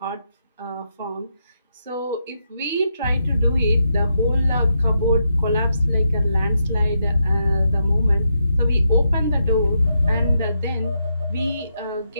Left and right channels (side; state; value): both; inverted; correlation -0.82